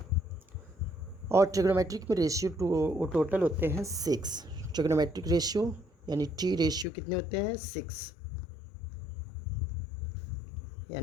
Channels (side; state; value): right; drops out; at 6.9 s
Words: और ट्रिग्नोमेट्रिक में रेशियो टोटल होते हैं 6। ट्रिग्नोमेट्रिक रेशियो यानी टी रेशियो कितने होते हैं 6,